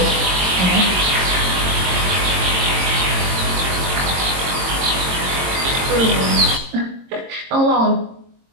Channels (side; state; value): left; late; 22 ms